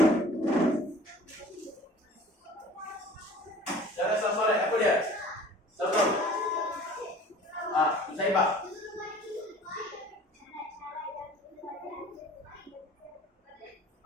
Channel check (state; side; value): normal; both; correlation 0.47